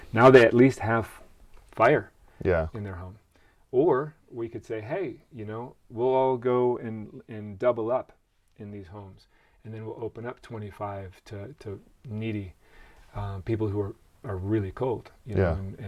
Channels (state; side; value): identical; both; correlation 1.00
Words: now they at least have fire in their home. Or we could say, hey, we'll all go and double up in these homes, and then we'll open up 25 to needy people who are really cold,